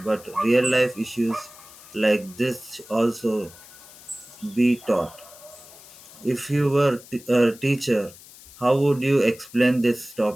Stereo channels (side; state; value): left; noise; hiss, 20 dB below the sound